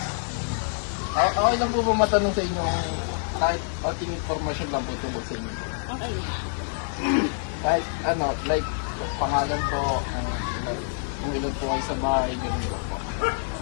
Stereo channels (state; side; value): silent; right; digital silence